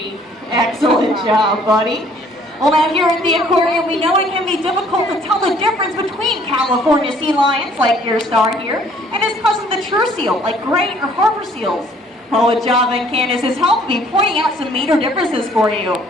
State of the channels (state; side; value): normal; both; correlation 0.59